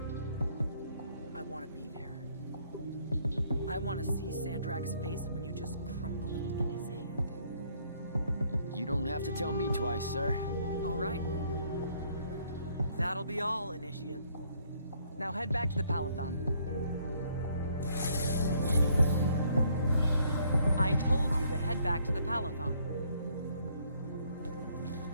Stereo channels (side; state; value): both; inverted; correlation -0.66